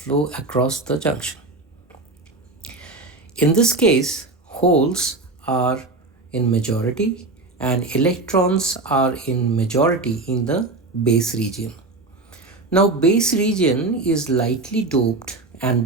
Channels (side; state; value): left; quieter; 3.3 dB